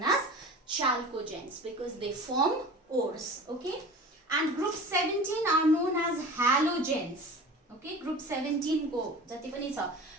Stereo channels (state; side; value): normal; both; correlation 0.38